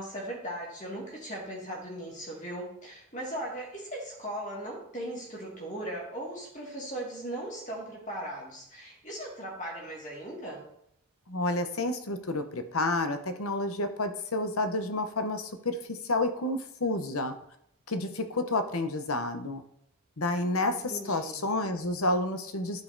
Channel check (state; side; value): normal; both; correlation -0.04